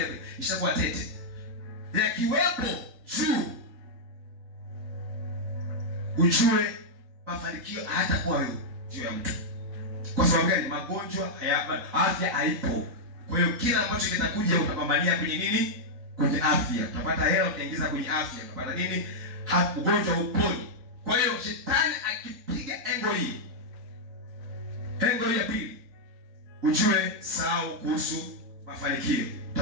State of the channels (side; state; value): left; late; 3.9 ms